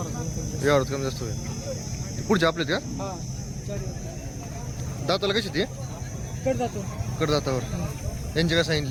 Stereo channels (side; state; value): both; identical; correlation 1.00